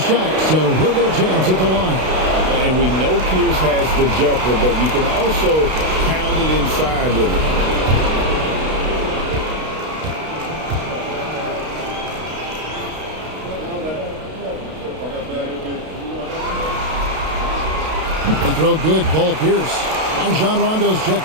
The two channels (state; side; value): late; left; 32 ms